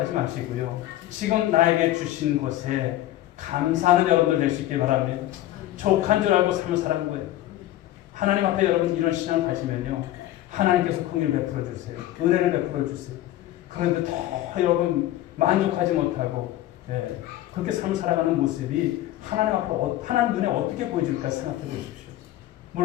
마시고요. 지금 나에게 주신 것에 감사하는 여러분들 될 수 있길 바랍니다. 족한 줄 알고 삶을 살아가는 거예요. 하나님 앞에 여러분 이런 신앙을 가지면요, 하나님께서 긍휼을 베풀어 주세요. 은혜를 베풀어 주세요. 그런데 더 여러분 만족하지 못하고 그렇게 삶을 살아가는 모습이 하나님 앞으로 하나님 눈에 어떻게 보여질까 생각해 보십시오.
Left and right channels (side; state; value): right; quieter; 14.4 dB